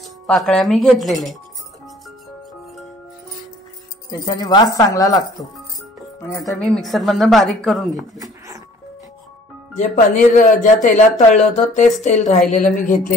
पाकळ्या मी घेतलेल्या आहेत, त्याच्याने वास चांगला लागतो। आणि आता मी मिक्सरमधून बारीक करून घेते। जे पनीर ज्या तेलात तळलं होतं तेच तेल राहिलेलं मी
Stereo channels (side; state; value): both; normal; correlation 0.54